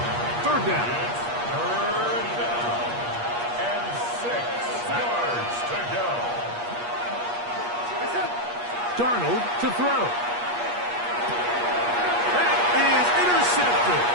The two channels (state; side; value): late; left; 8.4 ms